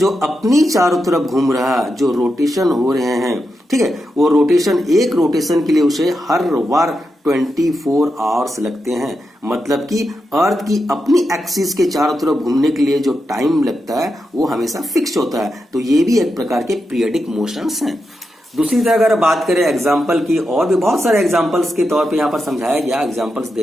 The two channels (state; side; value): normal; both; correlation 0.87